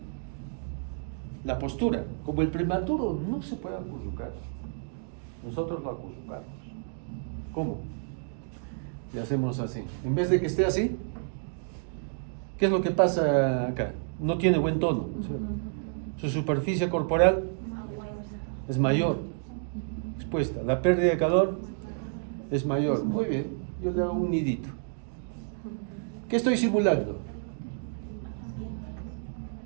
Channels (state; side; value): silent; left; digital silence